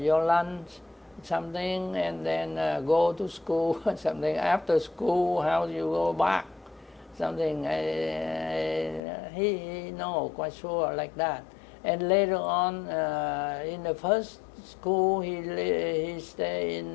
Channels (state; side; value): drops out; right; at 9.0 s